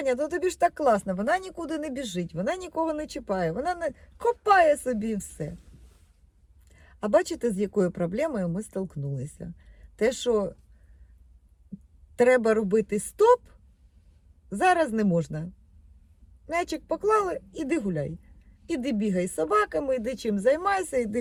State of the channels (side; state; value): both; identical; correlation 1.00